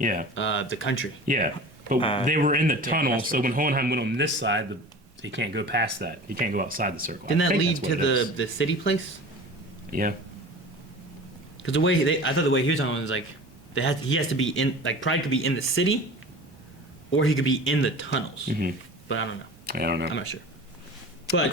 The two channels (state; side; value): normal; both; correlation 0.38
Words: the country. yeah. But they were in the tunnel, that's so when Hohenheim went on this side, he can't go past that. He can't go outside the circle. Didn't I that think lead that's to what it is. the city place? Yeah. Because the way I thought the way he was talking was like he has to be in like Pride could be in the city, or he could be in the tunnels. But I don't know. I don't know. I'm not sure.